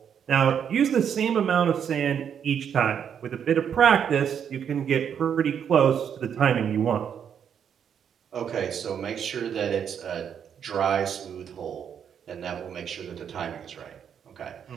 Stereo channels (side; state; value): left; quieter; 8.1 dB